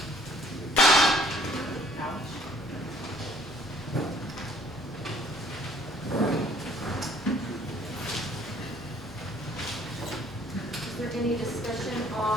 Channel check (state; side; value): normal; both; correlation 0.58